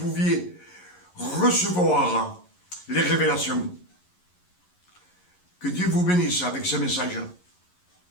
recevoir les révélations. Que Dieu vous bénisse avec ce message.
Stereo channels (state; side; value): late; right; 11 ms